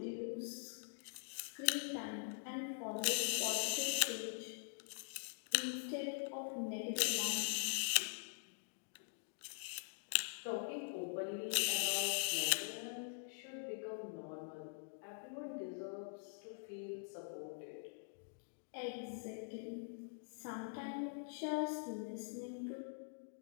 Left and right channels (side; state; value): right; silent; digital silence